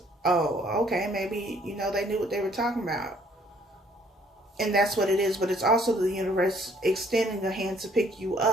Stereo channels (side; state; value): both; normal; correlation 0.62